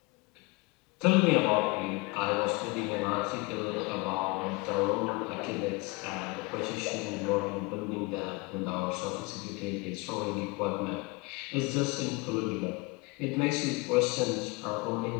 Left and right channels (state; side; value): quieter; right; 25.5 dB